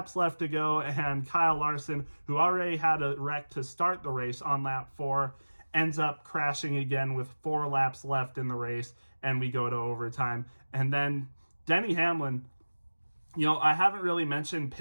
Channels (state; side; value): inverted; both; correlation -1.00